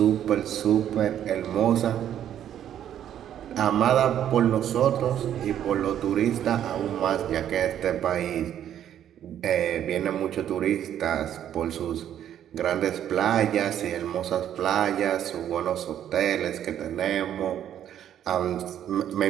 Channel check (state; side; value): quieter; left; 10.4 dB